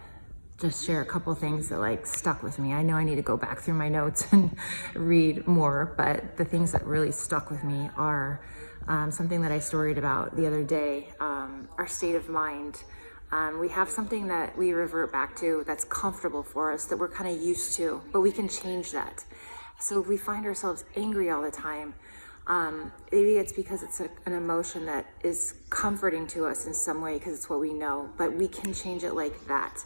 just share a couple things that stuck with me. I know I need to go back through my notes and read more, but the things that really stuck with me are something that I storied about the other day, our state of mind. We have something that we revert back to that's comfortable for us, that we're kind of used to, but we can change that. So if we find ourselves angry all the time, maybe it's because it's an emotion that is comforting to us in some way because it's what we know, but we can change it like that.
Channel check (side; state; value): both; inverted; correlation -1.00